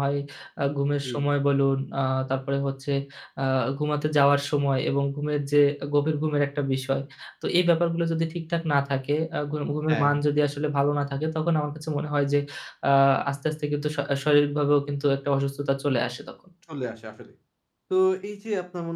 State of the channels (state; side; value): identical; both; correlation 1.00